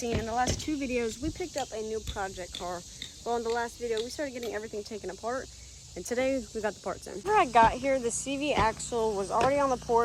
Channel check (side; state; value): both; identical; correlation 1.00